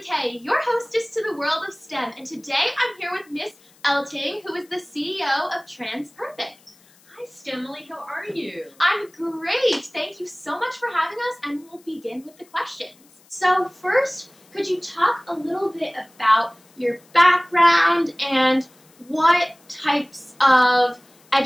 your hostess to the world of STEM, and today I'm here with Miss Elting, who is the CEO of TransPerfect. Hi STEMilyK, how are you? I'm great! Thank you so much for having us, and we'll begin with the questions. So first, could you talk a little bit about your background and what types of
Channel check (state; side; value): noise; left; hiss, 29 dB below the sound